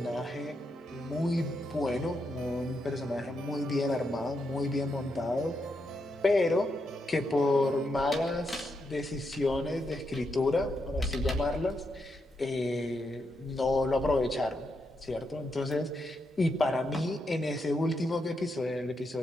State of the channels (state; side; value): normal; both; correlation 0.82